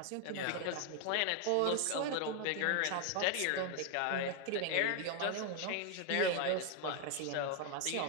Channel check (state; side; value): different; both; correlation 0.01